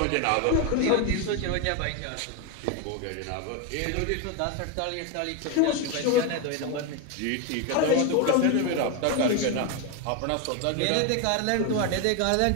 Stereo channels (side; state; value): both; different; correlation 0.02